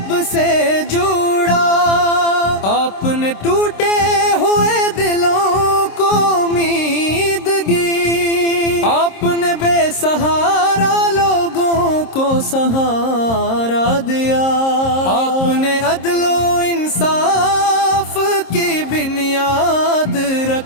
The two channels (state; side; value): late; right; 26 ms